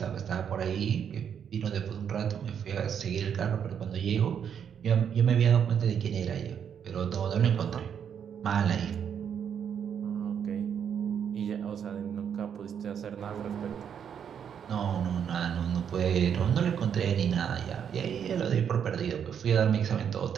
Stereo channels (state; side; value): quieter; left; 8.1 dB